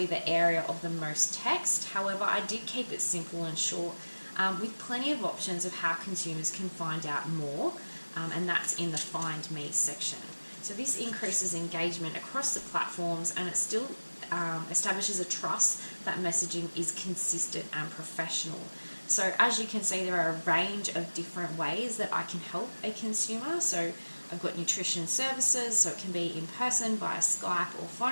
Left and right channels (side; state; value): both; inverted; correlation -1.00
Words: the area of the most text. However, I did keep it simple and short with plenty of options of how consumers can find out more, and that's in the Find Me section. So this increases engagement across the platforms, and it still establishes a trust that messaging is consistent and professional. So as you can see, there are a range of different ways that I can help a consumer. So I've got nutrition services, so it can be in person, via Skype or